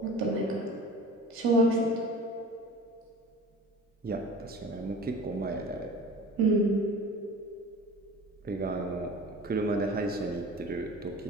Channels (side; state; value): both; normal; correlation 0.39